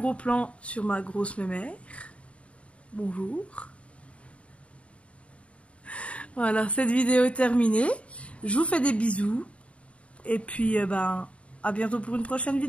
plan sur ma grosse mémère. Bonjour. Voilà, cette vidéo est terminée. Je vous fais des bisous. Et puis, à bientôt pour une prochaine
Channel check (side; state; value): right; late; 0.062 ms